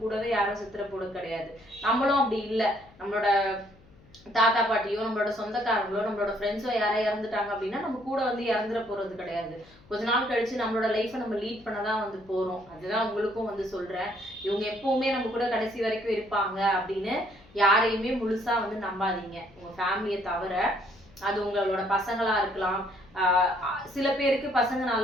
கூடவே யாரும் சித்திர போட கிடையாது. நம்மளும் அப்படி இல்லை, நம்மளோட தாத்தா பாட்டியோ நம்மளோட சொந்தக்காரங்களோ நம்மளோட ஃப்ரெண்ட்ஸோ யாரோ இறந்துட்டாங்க அப்படின்னா நம்ம கூட வந்து இறந்துட போறது கிடையாது. கொஞ்ச நாள் கழிச்சு நம்மளோட லைஃப்பை நம்ம லீட் பண்ணதான் வந்து போறோம். அதுதான் உங்களுக்கும் வந்து சொல்றேன். இவங்க எப்பவுமே நம்ம கூட கடைசி வரைக்கும் இருப்பாங்க அப்படின்னு யாரையுமே முழுசா வந்து நம்பாதீங்க, உங்க ஃபேமிலியை தவிர. அது உங்களோட பசங்களா இருக்கலாம். சில பேருக்கு பசங்க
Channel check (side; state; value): left; noise; hum, 26 dB below the sound